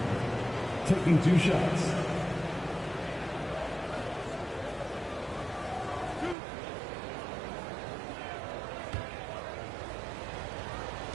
Taking 2 shots.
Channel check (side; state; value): left; drops out; at 6.4 s